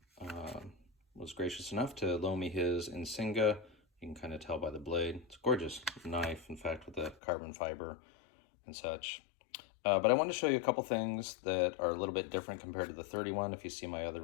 was gracious enough to loan me his InsingOh. You can kind of tell by the blade. It's a gorgeous knife, in fact, with the carbon fiber and such. But I wanted to show you a couple things that are a little bit different compared to the 31. If you see my other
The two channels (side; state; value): right; drops out; at 7.2 s